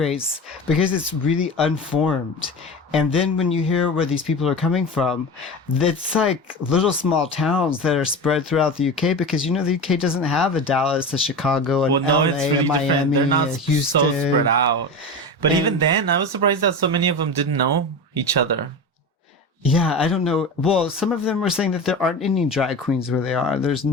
because it's really unformed. And then when you hear where these people are coming from, it's like little small towns that are spread throughout the UK, because, the UK doesn't have a Dallas, a Chicago, an LA, it's really a Miami, different. They're not a so Houston. spread out. But And- even then, I was surprised that so many of them didn't know each other. Yeah, I don't know. Well, some of them were saying that there aren't any drag queens where they are. There's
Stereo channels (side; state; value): both; normal; correlation 0.27